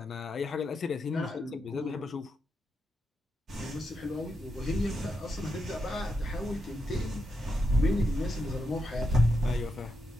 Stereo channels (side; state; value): both; normal; correlation 0.84